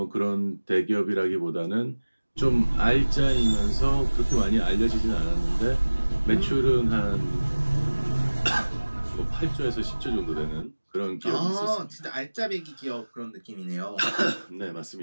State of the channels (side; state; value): both; inverted; correlation -1.00